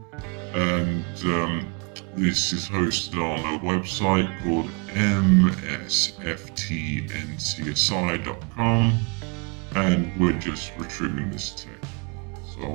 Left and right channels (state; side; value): quieter; left; 33.0 dB